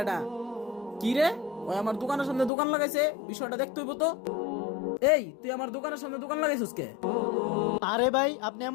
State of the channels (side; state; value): right; drops out; at 2.5 s